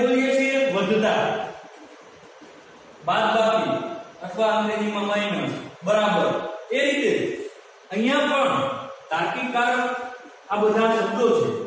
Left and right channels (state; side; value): identical; both; correlation 1.00